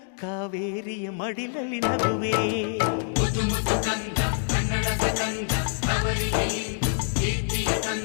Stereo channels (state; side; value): silent; right; digital silence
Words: ಕಾವೇರಿಯ ಮಡಿಲಲ್ಲಿ ನಗುವೆ.